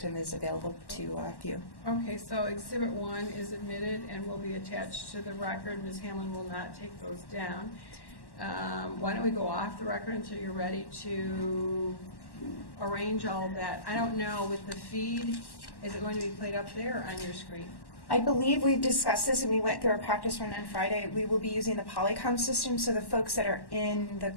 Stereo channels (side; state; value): right; late; 1.1 ms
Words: is available to view. Okay, so Exhibit 1 is admitted and will be attached to the record. Ms. Hamlin will not take those down. Why don't we go off the record until you're ready to arrange all of that? I don't know, with the feed, is it going to be played up there or on your screen? I believe we've discussed this and we went through a practice run on Friday. We will be using the Polycom system, so the folks that are in the